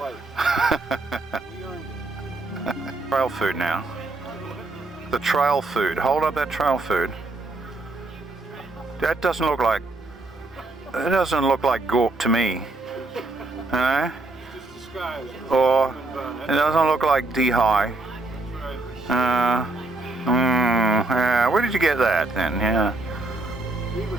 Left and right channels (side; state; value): left; quieter; 3.0 dB